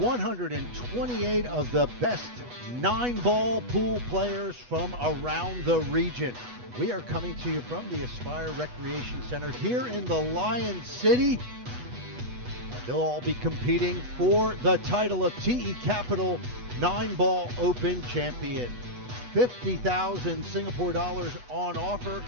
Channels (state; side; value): late; left; 8.2 ms